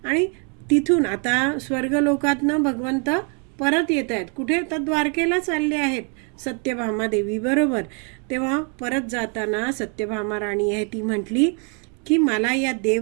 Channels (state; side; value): quieter; left; 37.9 dB